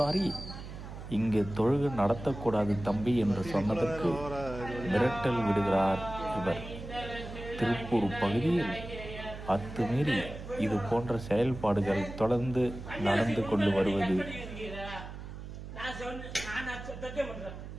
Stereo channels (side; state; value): right; noise; hum, 11 dB below the sound